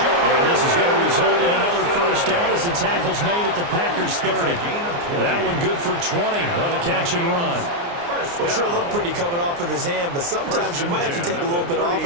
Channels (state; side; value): late; left; 29 ms